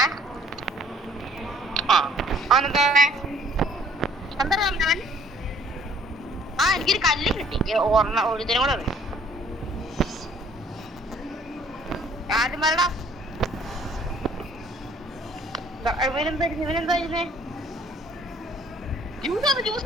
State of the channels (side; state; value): both; normal; correlation 0.57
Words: അവനെന്താ എന്താ അവൻ? എനിക്കൊരു കല്ല് കിട്ടി. ഒരുതിനും കൂടെ അറിയാം. ആദ്യം വരടാ. ഇവനെന്തായിരുന്നേ?